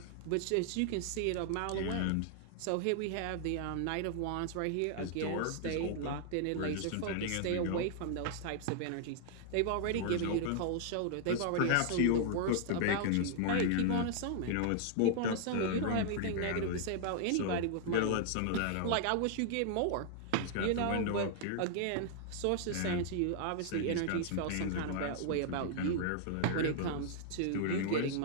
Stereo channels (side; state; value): both; different; correlation -0.01